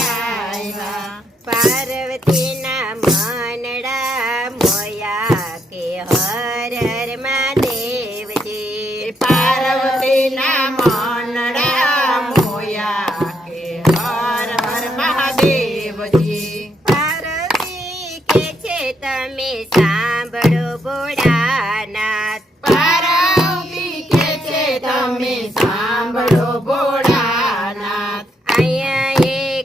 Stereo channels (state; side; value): normal; both; correlation 0.77